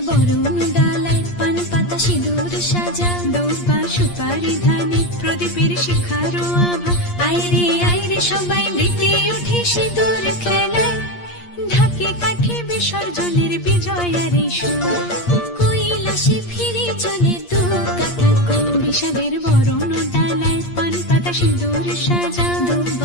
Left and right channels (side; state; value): right; late; 8.5 ms